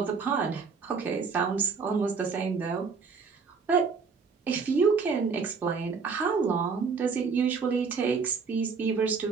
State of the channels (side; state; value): left; quieter; 5.3 dB